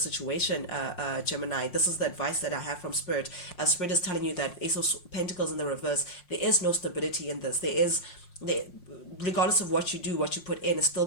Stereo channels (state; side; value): late; right; 5.6 ms